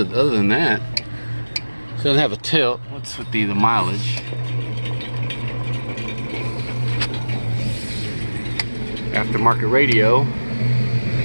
than that, it doesn't have a tilt. What's with the mileage? Aftermarket radio.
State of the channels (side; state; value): both; inverted; correlation -1.00